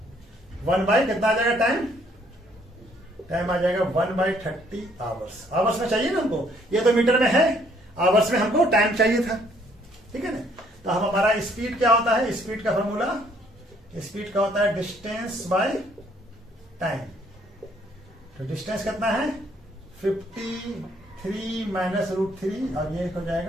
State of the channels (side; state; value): both; normal; correlation 0.65